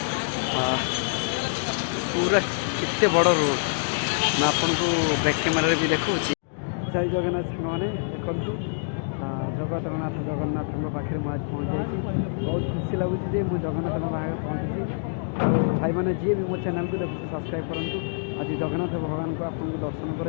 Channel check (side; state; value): right; silent; digital silence